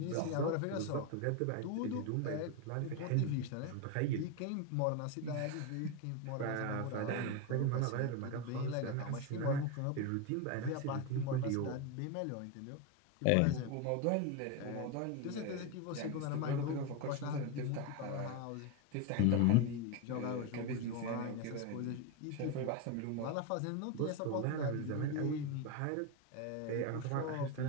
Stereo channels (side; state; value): both; different; correlation 0.03